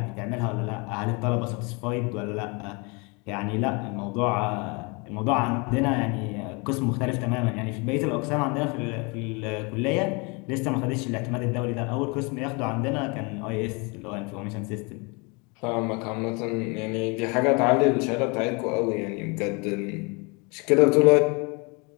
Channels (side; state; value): right; quieter; 30.2 dB